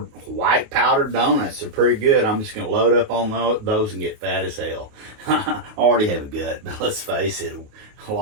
white powdered donuts. They're pretty good. I'm just going to load up on those and get fat as hell. I already have a gut, but let's face it, a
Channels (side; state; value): left; late; 28 ms